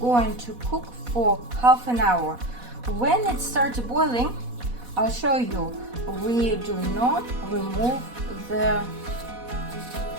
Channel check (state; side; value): late; left; 4.1 ms